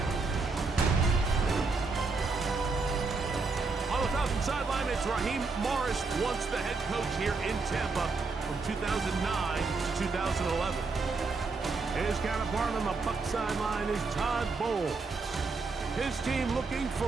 On the Falcons sideline, it's Raheem Morris, once the head coach here in Tampa from 2009 to 2011. His counterpart on the Buc sideline is Todd Bowles. His team looking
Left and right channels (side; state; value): left; quieter; 4.1 dB